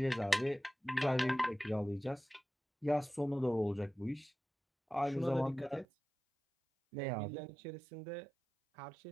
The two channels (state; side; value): drops out; left; at 5.9 s